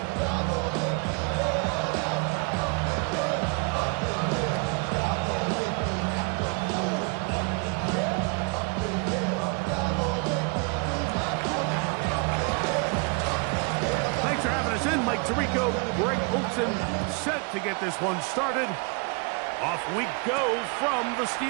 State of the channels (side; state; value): left; quieter; 33.1 dB